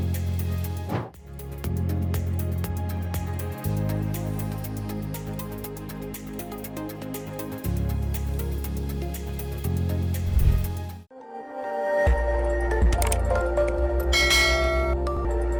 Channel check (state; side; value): identical; both; correlation 1.00